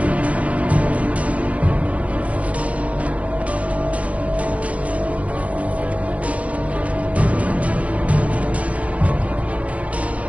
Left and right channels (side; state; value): left; late; 0.065 ms